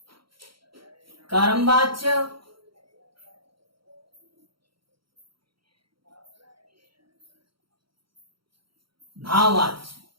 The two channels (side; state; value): left; late; 0.74 ms